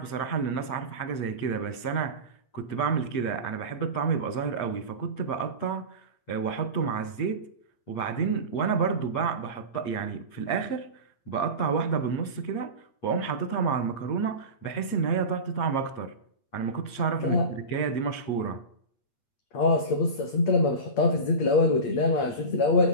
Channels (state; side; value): late; right; 8.5 ms